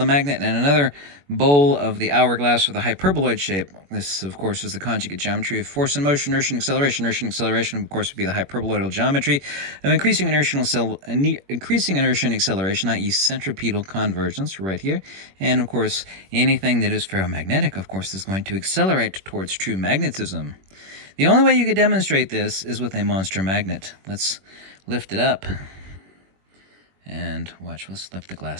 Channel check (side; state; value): left; late; 21 ms